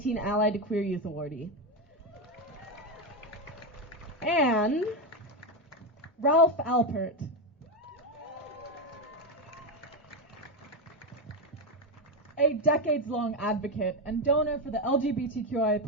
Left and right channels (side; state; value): both; normal; correlation 0.10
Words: Ally to Queer Youth awardee. And Ralph Alpert. A decades-long advocate and donor for the